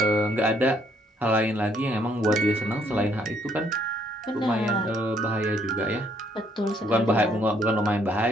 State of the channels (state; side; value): normal; both; correlation 0.67